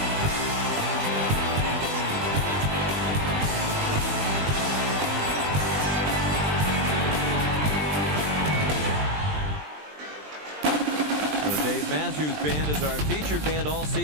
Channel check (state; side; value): late; left; 20 ms